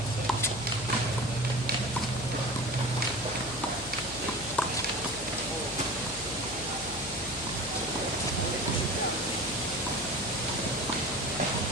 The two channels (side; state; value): left; noise; hum, 13 dB below the sound